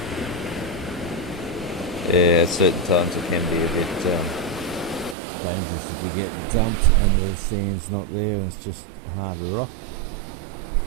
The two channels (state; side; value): drops out; left; at 5.2 s